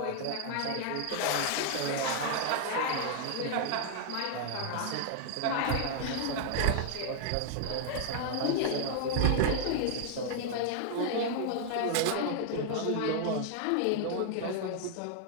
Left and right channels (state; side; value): different; both; correlation -0.01